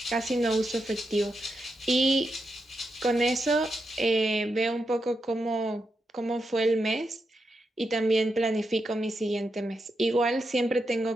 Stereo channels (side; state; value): both; normal; correlation 0.85